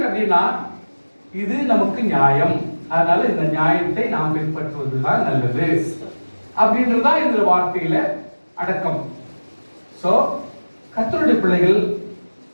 அப்படின்னா இது நமக்கு நியாயம், அதனால இந்த நியாயத்தை நாம் பின்பற்றுவதுதான் நல்லது அப்படின்றதுதான் இந்த வார்த்தையில அடக்கம். சோ கர்த்தருடைய பிள்ளைகள்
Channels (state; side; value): inverted; both; correlation -1.00